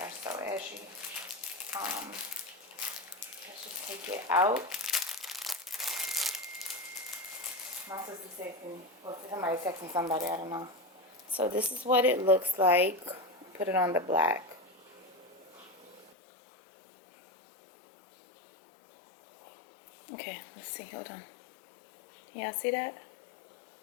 are so ashy. Let's just take it out. My sister said to me, well, somebody texting somebody, I don't know. So this is what it looks like. Put it on the black. Okay, let's see, hold on. Can y'all see that?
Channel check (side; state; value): right; drops out; at 16.1 s